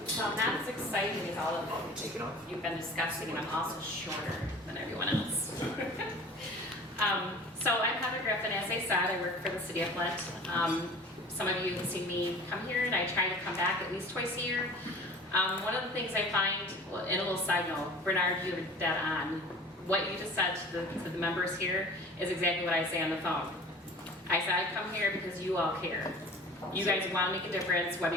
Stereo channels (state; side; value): normal; both; correlation 0.42